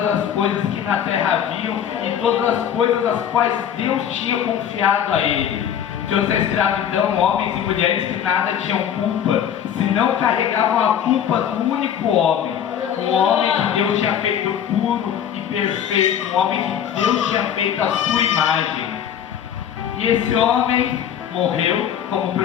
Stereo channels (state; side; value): quieter; right; 9.2 dB